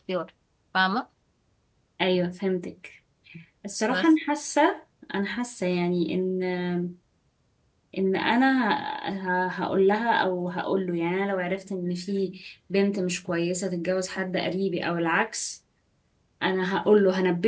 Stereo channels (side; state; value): both; identical; correlation 1.00